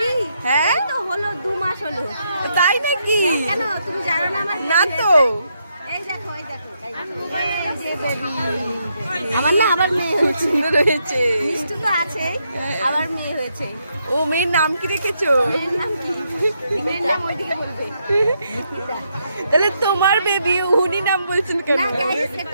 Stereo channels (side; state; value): both; inverted; correlation -0.78